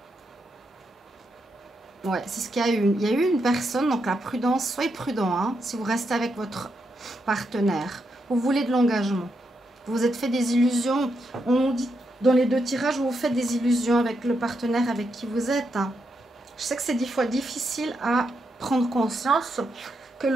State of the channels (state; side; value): normal; both; correlation 0.82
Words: Ouais, c'est ce qu'il y a eu. Il y a eu une personne, donc la prudence, soyez prudent, hein, si vous restez avec votre partenaire. Vous voulez de l'engagement. Vous vous êtes fait des illusions. On dit dans les deux tirages, vous faites des illusions avec le partenaire avec qui vous êtes. Hein. Je sais que c'est des fois difficile à prendre conscience que